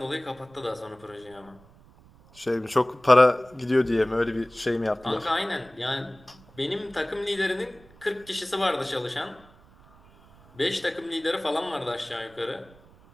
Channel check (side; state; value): right; noise; rumble, 26 dB below the sound